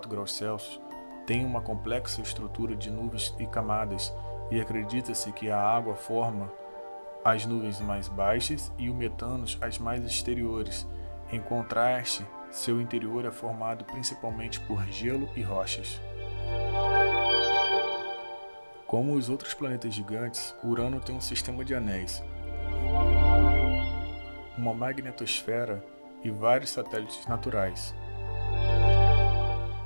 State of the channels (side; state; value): both; inverted; correlation -1.00